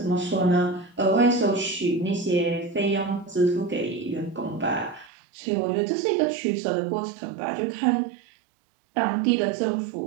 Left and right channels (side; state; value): left; drops out; at 5.1 s